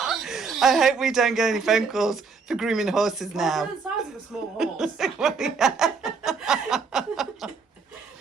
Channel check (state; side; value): quieter; left; 5.0 dB